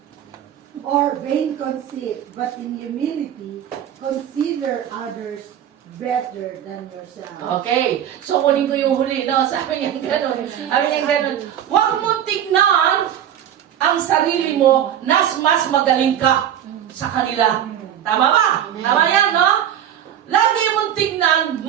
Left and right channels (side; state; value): left; quieter; 10.2 dB